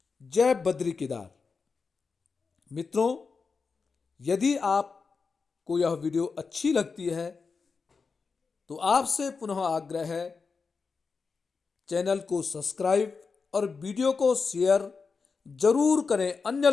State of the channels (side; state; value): right; quieter; 4.9 dB